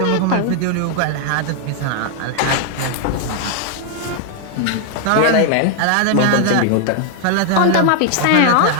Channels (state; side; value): different; both; correlation 0.00